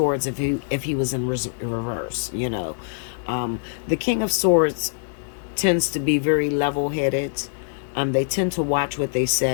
if he was in reverse, you know. The King of Swords tends to be very level-headed. They tend to watch what they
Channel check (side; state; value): right; silent; digital silence